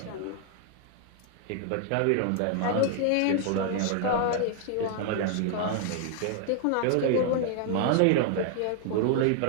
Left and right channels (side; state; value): both; different; correlation 0.00